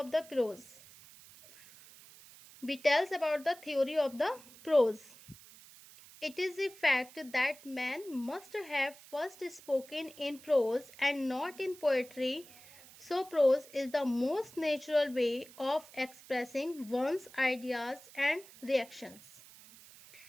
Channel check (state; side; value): noise; right; hiss, 21 dB below the sound